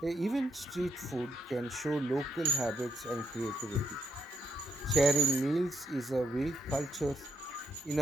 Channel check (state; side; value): normal; both; correlation 0.76